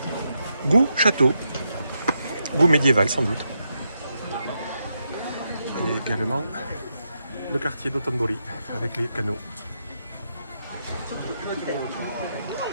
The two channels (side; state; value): both; inverted; correlation -0.83